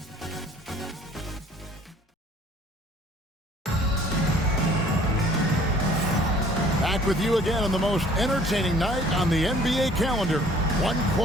Back with you again on the most entertaining night on the NBA calendar. 1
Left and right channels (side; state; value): both; normal; correlation 0.54